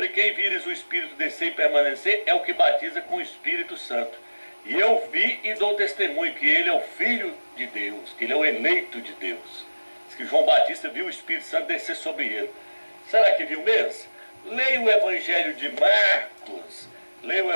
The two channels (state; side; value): inverted; both; correlation -1.00